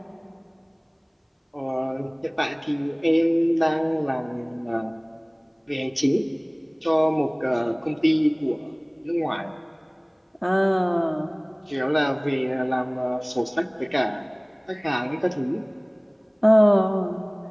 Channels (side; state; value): both; identical; correlation 1.00